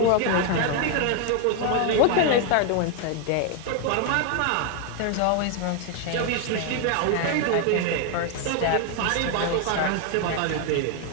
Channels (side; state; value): both; different; correlation 0.01